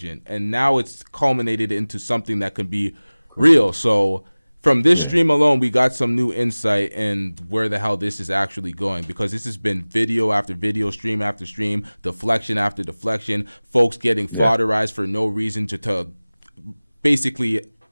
and now it's culminated into something that can be real. So from this stream alone, we got some new insight in where the hell this is actually going, because this has been video after video, stream after stream, deflection after deflection, folks getting fodderized for no reason to basically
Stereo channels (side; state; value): both; inverted; correlation -0.99